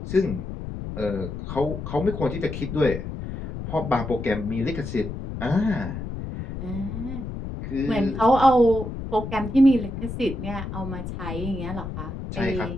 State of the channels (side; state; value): left; noise; rumble, 7 dB below the sound